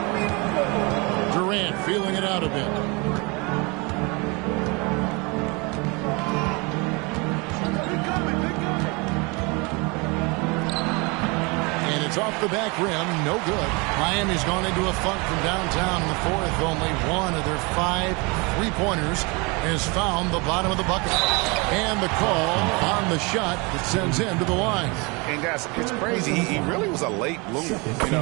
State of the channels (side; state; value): left; quieter; 28.3 dB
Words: Durant feeling it out a bit. It's off the back rim, no good. Miami's gone into a funk from downtown in the fourth. Only one of their 5 three-pointers has found the bottom of the bucket. And the call on the shot that sends him to the line. And guys, it's crazy. He really was a late bloomer. You